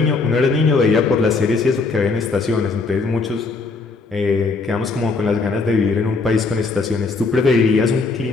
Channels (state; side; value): quieter; right; 4.1 dB